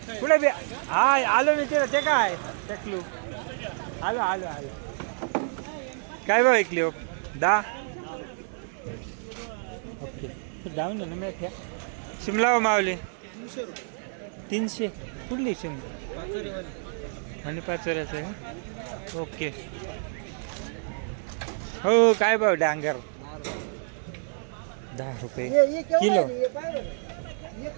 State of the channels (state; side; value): silent; left; digital silence